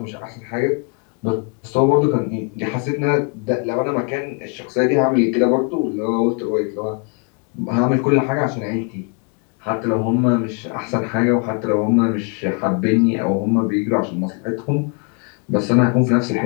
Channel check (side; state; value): right; quieter; 35.3 dB